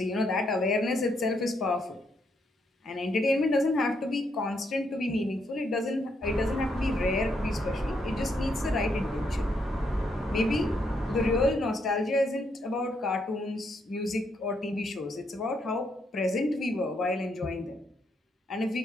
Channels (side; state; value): both; normal; correlation 0.76